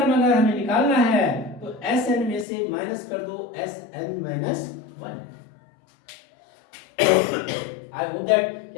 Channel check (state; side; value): drops out; right; at 2.5 s